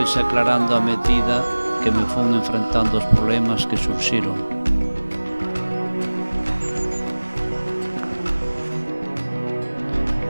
aclarando a medida que me fun enfrentando os problemas que surxiron.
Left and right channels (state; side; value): inverted; both; correlation -1.00